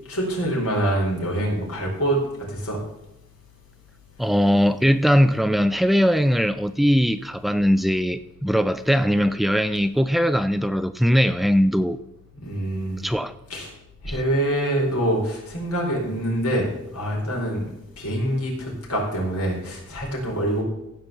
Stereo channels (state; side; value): noise; left; hum, 30 dB below the sound